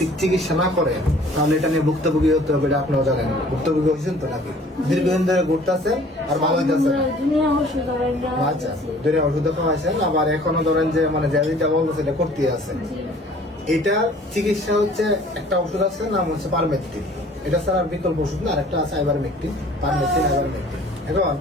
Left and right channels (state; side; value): normal; both; correlation 0.52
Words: চিকিৎসা না করে তাহলে এটা নিয়ে ভুক্তভোগী হতে হবে। এটা আপনারা জানেন, ভুক্তভোগী হয়েছেন তো নাকি? দীর্ঘদিন ধরে ঘুরতেছে আর ভালো হইতেছে। আচ্ছা, দুনিয়া ওষুধ খাওয়াইছেন, আবার এখনো ধরেন যে মানে যেটা বলতেছে এটা করতে আছে। এটা চিকিৎসা হচ্ছে একটা ওষুধ আছে নাম হচ্ছে পারমেথ্রিন। এটা ছাড়া বিকল্প ওষুধ না, আর একটা আছে আইভারমেকটিন, পারমেথ্রিন আইভারমেকটিন। এখন